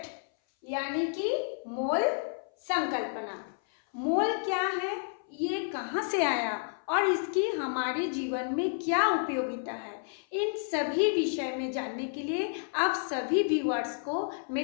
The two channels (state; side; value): silent; right; 57 dB below the other